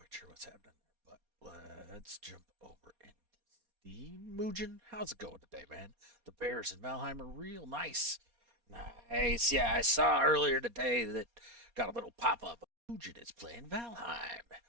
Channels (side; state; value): left; late; 4.2 ms